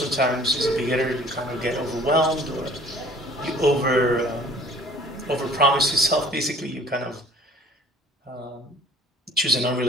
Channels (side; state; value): both; normal; correlation 0.51